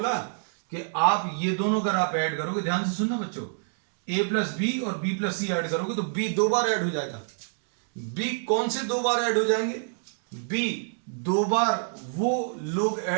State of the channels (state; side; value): silent; left; digital silence